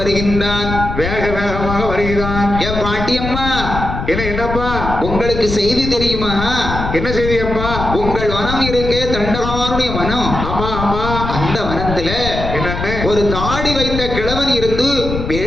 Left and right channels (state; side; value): noise; left; rumble, 5 dB below the sound